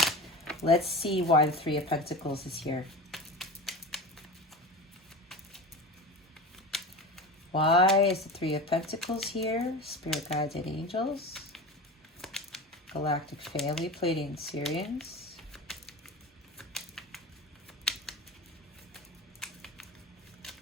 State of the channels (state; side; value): normal; both; correlation 0.30